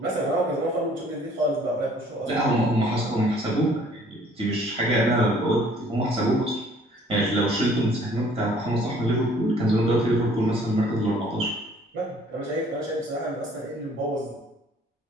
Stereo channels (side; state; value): both; normal; correlation 0.57